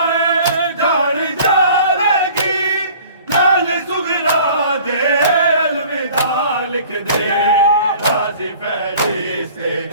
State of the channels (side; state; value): both; inverted; correlation -0.48